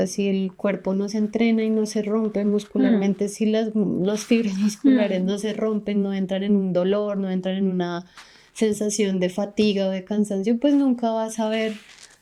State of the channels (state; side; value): identical; both; correlation 1.00